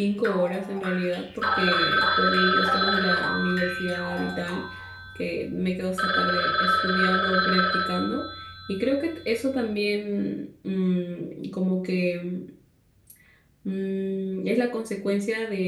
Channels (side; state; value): both; identical; correlation 1.00